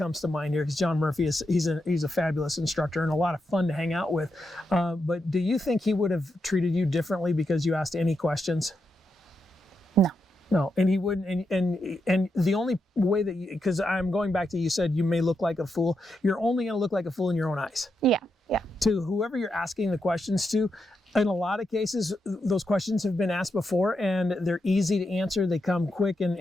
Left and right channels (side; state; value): both; normal; correlation 0.84